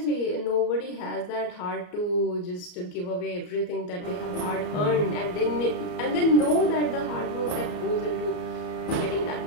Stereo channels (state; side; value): late; right; 34 ms